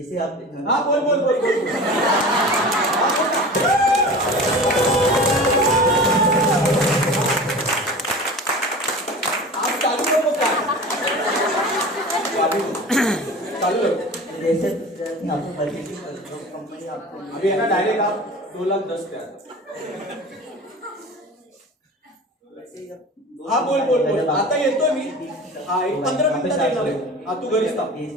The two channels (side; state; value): both; normal; correlation 0.36